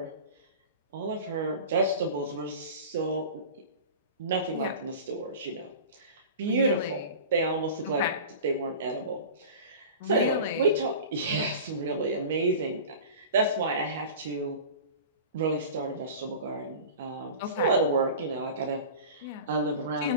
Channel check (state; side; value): inverted; both; correlation -0.36